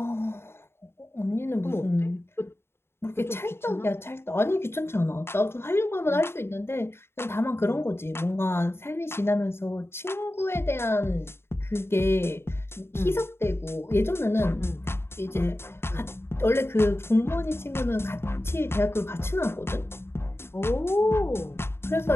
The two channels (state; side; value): late; right; 0.12 ms